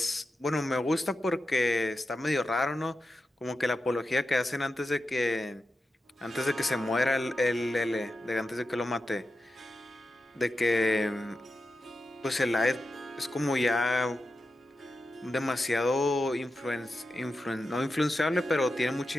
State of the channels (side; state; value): both; normal; correlation 0.90